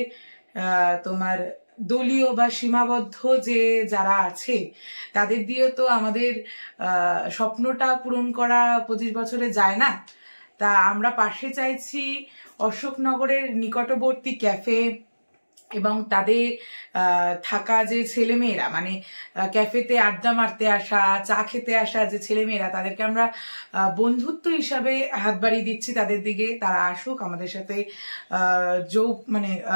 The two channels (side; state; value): both; inverted; correlation -1.00